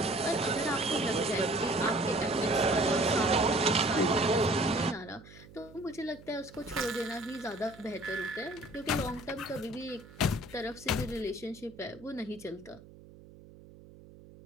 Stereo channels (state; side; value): noise; right; hum, 20 dB below the sound